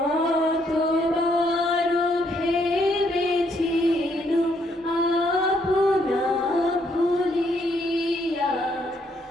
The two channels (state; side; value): normal; both; correlation 0.72